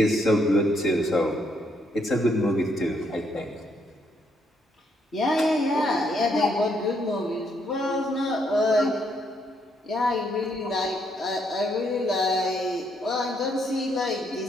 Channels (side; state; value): both; normal; correlation 0.74